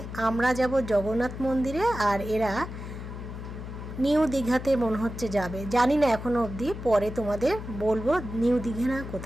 আমরা যাব জগন্নাথ মন্দিরে, আর এরা নিউ দীঘাতে মনে হচ্ছে যাবে, জানি না এখনো অবধি, পরে তোমাদের বলবো নিউ দীঘা না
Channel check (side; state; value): left; noise; hum, 9 dB below the sound